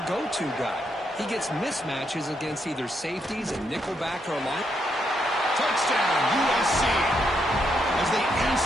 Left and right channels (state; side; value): normal; both; correlation 0.78